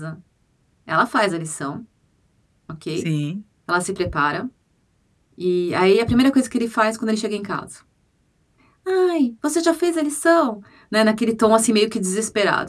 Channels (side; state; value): both; identical; correlation 1.00